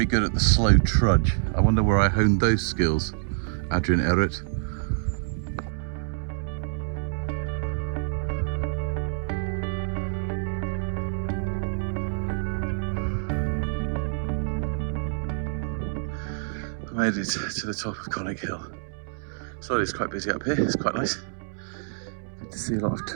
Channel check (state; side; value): silent; left; 60 dB below the other